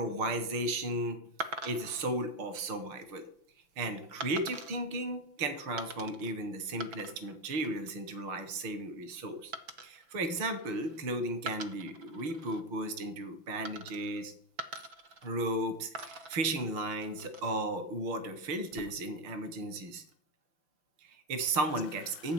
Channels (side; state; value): left; late; 5.8 ms